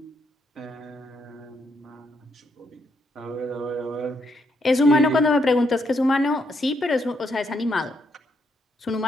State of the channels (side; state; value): both; normal; correlation 0.76